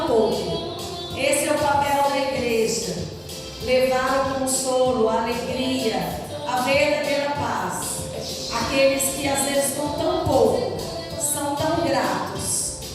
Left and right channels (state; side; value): identical; both; correlation 1.00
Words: pouco. Esse é o papel da igreja: levar o consolo, a alegria, a verdadeira paz. Aqueles que às vezes com tão pouco são tão gratos,